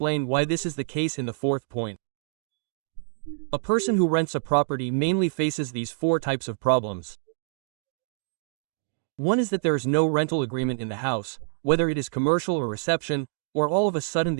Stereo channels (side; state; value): left; silent; digital silence